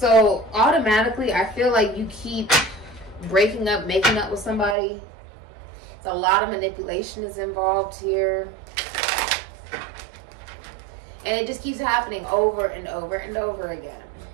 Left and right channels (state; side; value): drops out; left; at 4.8 s